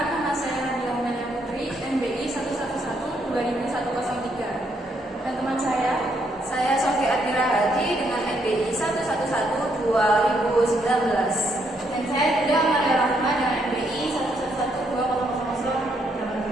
nama saya Nadia Umayyah Putri, NBI 111200103. Dan teman saya Sofi Admira Haji dengan NBI 1112019. Dan saya juga Maria Rahma dengan NBI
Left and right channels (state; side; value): normal; both; correlation 0.74